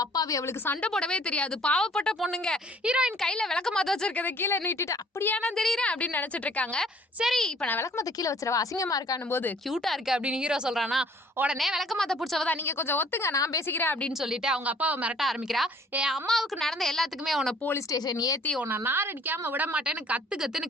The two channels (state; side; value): normal; both; correlation 0.56